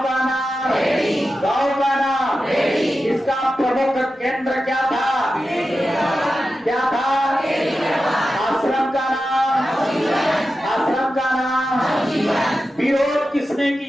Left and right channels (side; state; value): both; normal; correlation 0.92